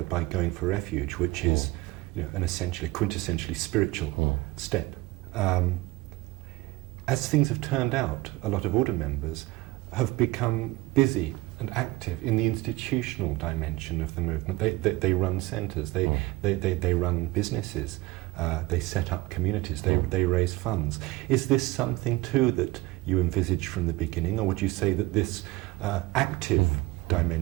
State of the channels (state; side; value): quieter; left; 20.4 dB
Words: by going for refuge, which is an essentially, quintessentially spiritual step. As things have turned out, a lot of order members have become busy and active in the institutional dimension of the movement. They run centres, they run businesses, they set up communities, they raise funds. Is this something too that you envisaged from the beginning, or would you say that this active